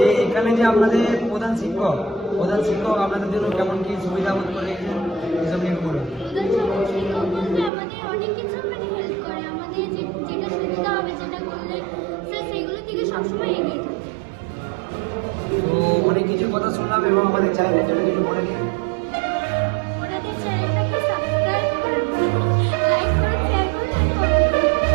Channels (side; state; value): left; drops out; at 7.7 s